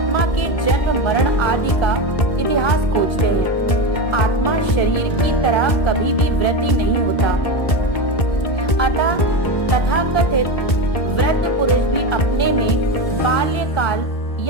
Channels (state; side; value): late; right; 1.8 ms